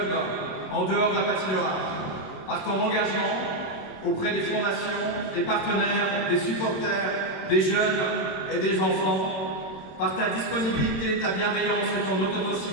en dehors de la patinoire. Par ton engagement auprès des fondations, des partenaires, des supporters, des jeunes et des enfants, par ta disponibilité, ta bienveillance et ton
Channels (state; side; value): late; right; 26 ms